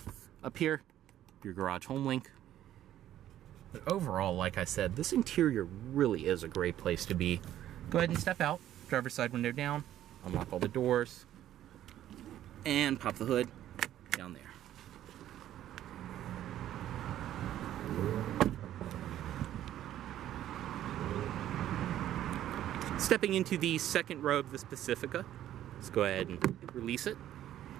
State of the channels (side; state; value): left; quieter; 12.2 dB